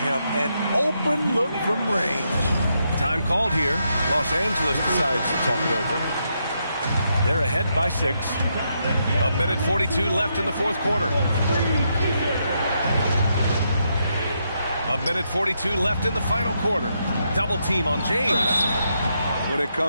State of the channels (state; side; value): inverted; both; correlation -0.80